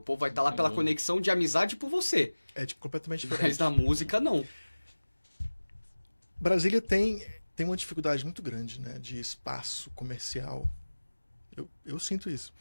povo vai estar lá pela conexão de amizade por você. É completamente diferente. Mas na música, não. Brasília tem uma dificuldade muito grande, né, de espaço comercial. Eu sinto isso.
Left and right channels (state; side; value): inverted; both; correlation -1.00